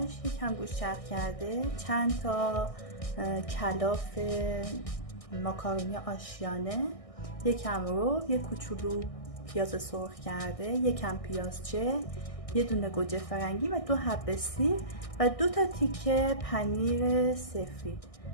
یکم گوشت چرخ کرده، چند تا کلاف ماکارونی آشیانه، یکم رب، یک کوچولو پیاز سرخ کرده، یکم پیازچه، یه دونه گوجه فرنگی و 2 حبه سیر و 2 تا تیکه پنیر سفید.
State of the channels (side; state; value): right; late; 1.6 ms